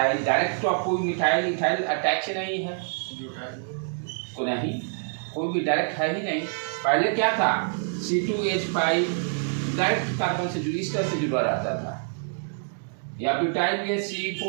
डायरेक्ट, तो आप कोई मिथाइल इथाइल अटैच नहीं है, कोई भी डायरेक्ट है ही नहीं। पहले क्या था, C2H5 डायरेक्ट कार्बन से इस तरह से जुड़ा रहता था, या ब्यूटाइल में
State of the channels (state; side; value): silent; left; digital silence